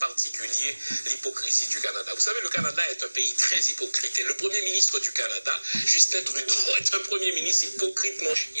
l'hypocrisie du Canada. Vous savez, le Canada est un pays très hypocrite et le premier ministre du Canada, Justin Trudeau, est un premier ministre hypocrite, mon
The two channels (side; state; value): both; inverted; correlation -1.00